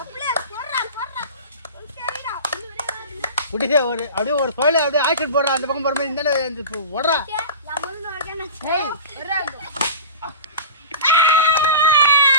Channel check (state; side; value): inverted; both; correlation -0.34